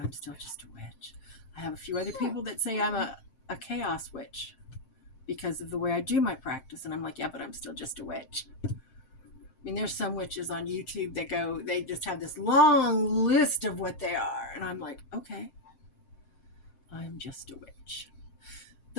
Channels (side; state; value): right; late; 7.6 ms